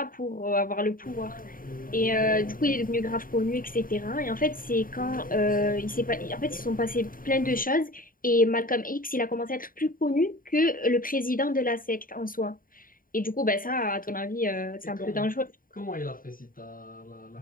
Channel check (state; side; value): late; right; 0.41 ms